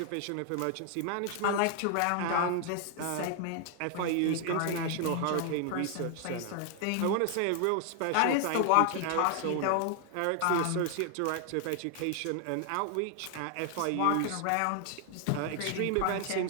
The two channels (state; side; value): different; both; correlation 0.00